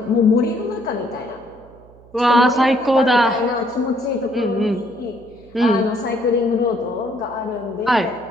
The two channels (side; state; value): right; noise; hum, 25 dB below the sound